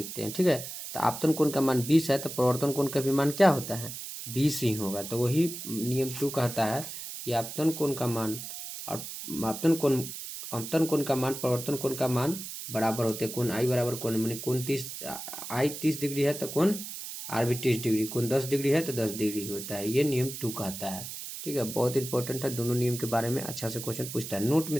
हैं, ठीक है। तो आपतन कोण का मान 20 है, तो परिवर्तन कोण का भी मान क्या होता है, 20 ही होगा। तो वही नियम 2 कहता है कि आपतन कोण का मान और आपतन कोण का मान परिवर्तन कोण का मान बराबर होते हैं। कोण आई बराबर कोण, मैंने कोण 30, आई 30 डिग्री है तो कोण आर भी 30 डिग्री, कोण 10 डिग्री है तो 10 डिग्री होता है, ये नियम 2 कहता है, ठीक है। बहुत इंपॉर्टेंट है, दोनों नियम के बारे में अच्छा से क्वेश्चन पूछता है। नोट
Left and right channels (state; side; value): noise; right; hiss, 9 dB below the sound